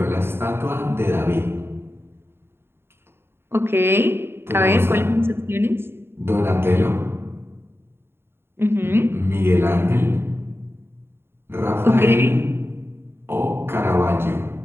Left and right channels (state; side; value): late; left; 0.11 ms